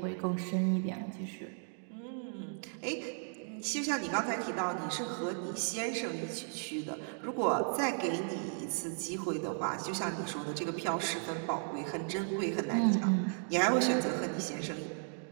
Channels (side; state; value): left; silent; 54 dB below the other